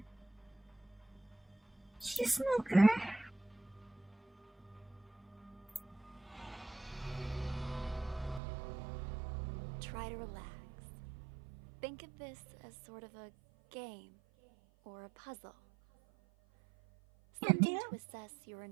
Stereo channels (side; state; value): left; drops out; at 8.4 s